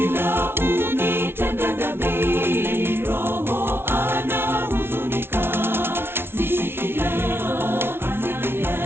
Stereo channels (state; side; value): late; left; 0.11 ms